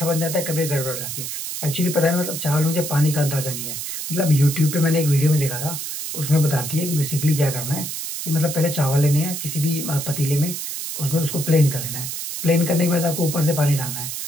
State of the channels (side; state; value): right; noise; hiss, 5 dB below the sound